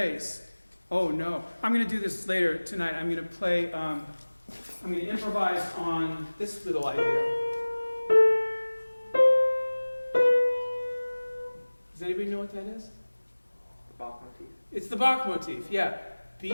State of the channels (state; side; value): inverted; both; correlation -1.00